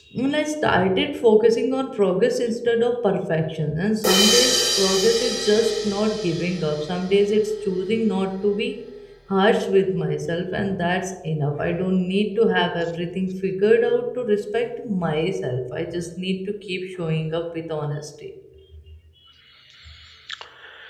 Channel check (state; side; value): identical; both; correlation 1.00